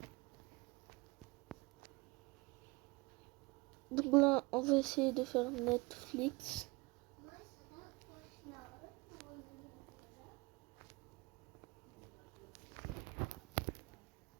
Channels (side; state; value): left; quieter; 24.8 dB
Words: Donc là, on va essayer de faire Netflix.